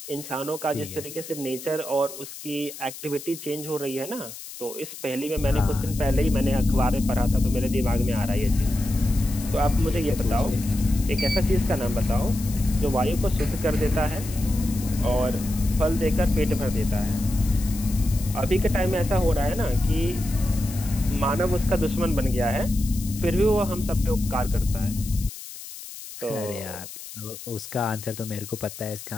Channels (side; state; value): left; noise; hiss, 13 dB below the sound